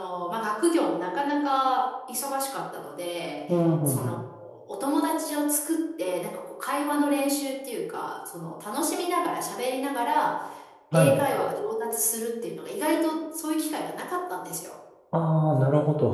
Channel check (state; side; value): identical; both; correlation 1.00